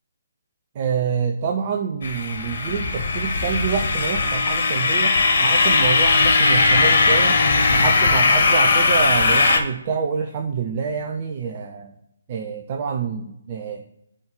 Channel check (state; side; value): inverted; both; correlation -0.74